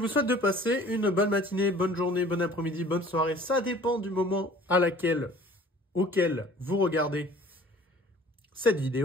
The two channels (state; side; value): normal; both; correlation 0.49